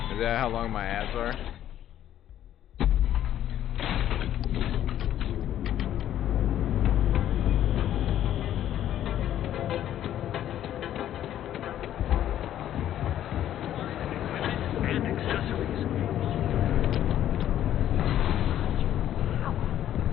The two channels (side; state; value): right; quieter; 11.5 dB